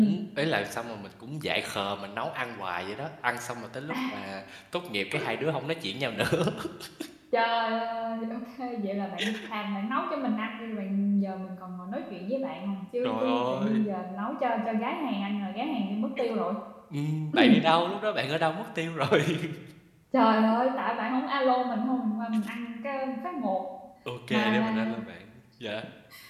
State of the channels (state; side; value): identical; both; correlation 1.00